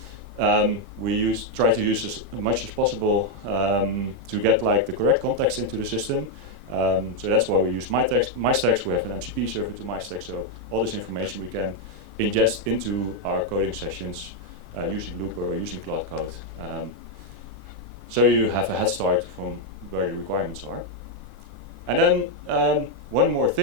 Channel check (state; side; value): normal; both; correlation 0.01